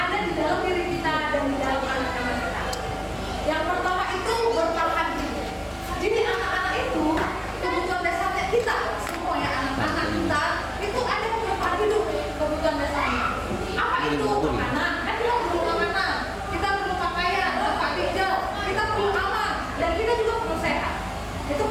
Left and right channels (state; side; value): identical; both; correlation 1.00